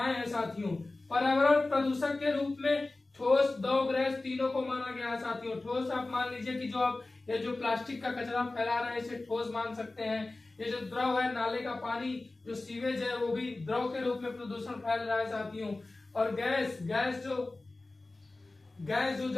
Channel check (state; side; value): quieter; right; 3.1 dB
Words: हैं। साथियों पर्यावरण प्रदूषक के रूप में ठोस, द्रव, गैस तीनों को माना गया है। साथियों ठोस आप मान लीजिए कि ये जो प्लास्टिक का कचरा फैला रहे हैं इसे ठोस मान सकते हैं। ये जो द्रव है, नाले का पानी, जो सीवेज है, वो भी द्रव के रूप में प्रदूषण फैल रहा है। साथियों और गैस